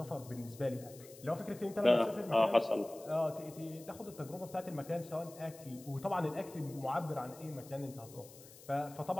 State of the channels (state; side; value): noise; left; hiss, 19 dB below the sound